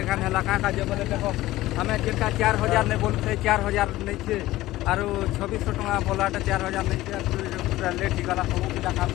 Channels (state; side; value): quieter; right; 16.7 dB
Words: खाने लगा का जो बोले देखो हमें जिनका 4000 नहीं बोलते 4000 नहीं छे और 2600 टका बोलाटा 4000 नहीं छे पूरा लेट ही गला सब का काम